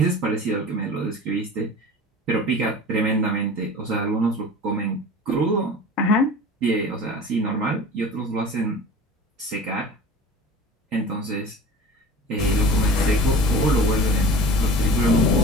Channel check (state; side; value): normal; both; correlation 0.38